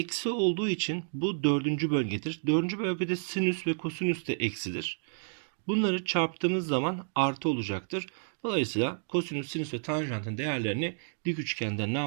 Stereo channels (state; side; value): silent; left; digital silence